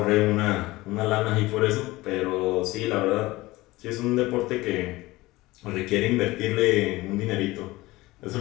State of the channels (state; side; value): quieter; right; 19.5 dB